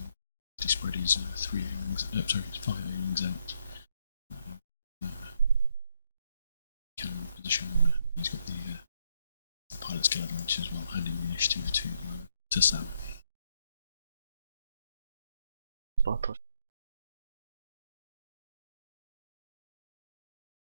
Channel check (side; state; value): both; inverted; correlation -0.75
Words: spread his 3 A-wings, sorry, his 5 A-wings out. Cannon position, he's got the pilot's killer launch as well, handing the initiative to Sam. Bartosz.